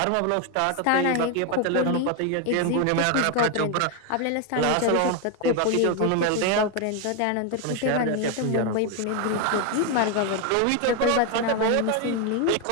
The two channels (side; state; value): both; different; correlation 0.01